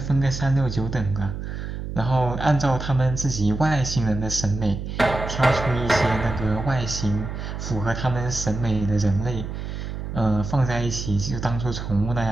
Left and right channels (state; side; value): noise; right; hum, 6 dB below the sound